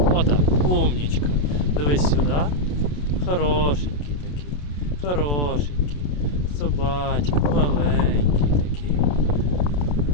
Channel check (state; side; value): late; right; 27 ms